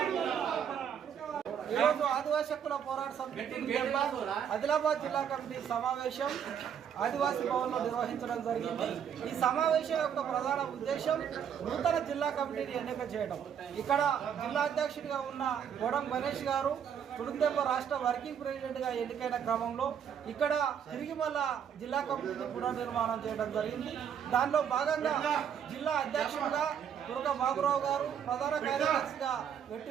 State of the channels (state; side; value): quieter; left; 8.3 dB